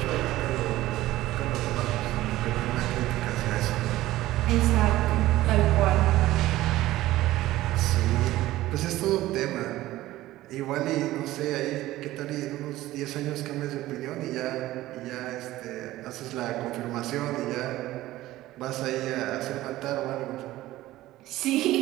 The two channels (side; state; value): left; quieter; 16.1 dB